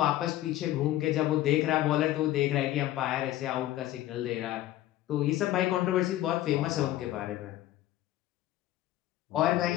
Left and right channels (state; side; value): quieter; right; 14.5 dB